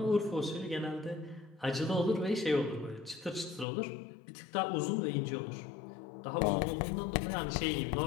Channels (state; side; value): drops out; right; at 3.7 s